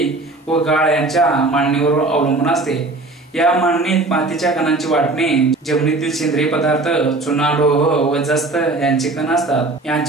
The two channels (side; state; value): left; quieter; 3.1 dB